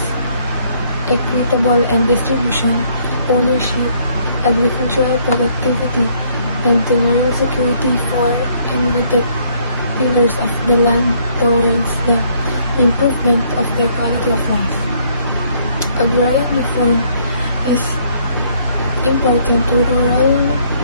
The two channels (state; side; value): inverted; both; correlation -0.66